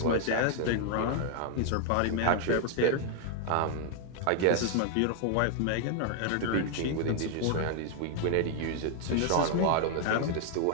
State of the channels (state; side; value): different; both; correlation 0.00